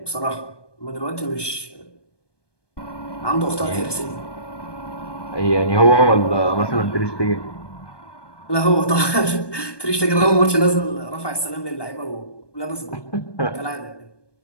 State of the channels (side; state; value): right; late; 1.2 ms